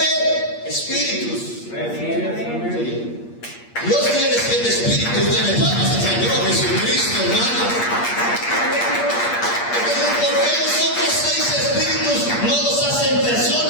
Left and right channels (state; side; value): late; right; 8.5 ms